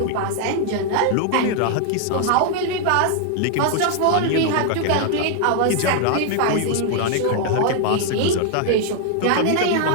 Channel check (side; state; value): both; different; correlation 0.00